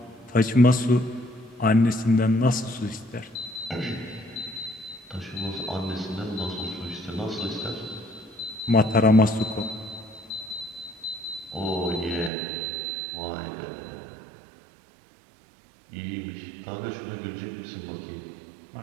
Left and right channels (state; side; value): drops out; left; at 12.3 s